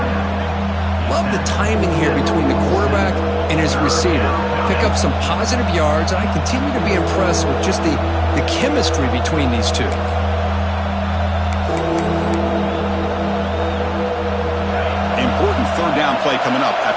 Love the timing here between the quarterback and his receiver. Pick up some positive yards, and I continue to be impressed with just the chemistry between these two. Important 3rd down play coming up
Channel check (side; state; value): both; identical; correlation 1.00